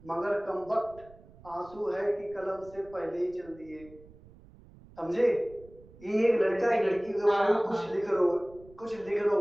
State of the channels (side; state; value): right; noise; rumble, 23 dB below the sound